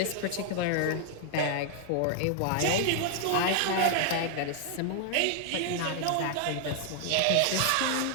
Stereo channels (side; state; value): both; different; correlation 0.00